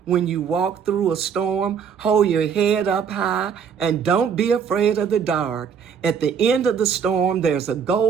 when you walk through a storm, hold your head up high and don't be afraid of the dark. At the end of the storm, there's a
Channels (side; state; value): left; quieter; 7.0 dB